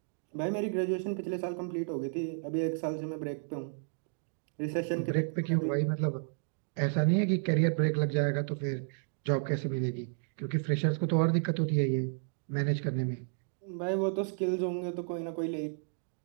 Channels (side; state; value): left; silent; digital silence